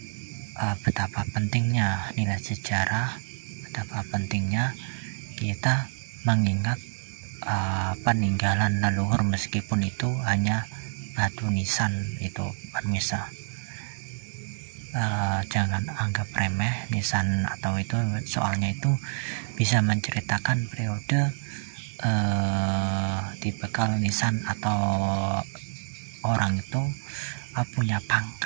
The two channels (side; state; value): left; silent; digital silence